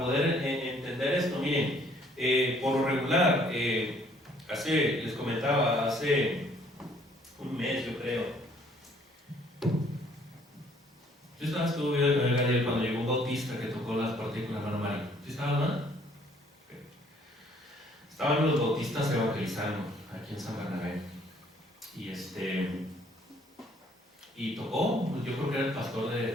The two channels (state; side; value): normal; both; correlation 0.61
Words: entender esto. Miren, por lo regular, les comentaba, hace un mes yo creo, yo estuve viendo el Gadiel cuando llegó un bautista que tocó las partículas, hermano Mario. ¿Sí estaba, verdad? Okay. Estaban los bautistas evangelizando aquí en San Bernabé y tocó, yo creo que era el pastor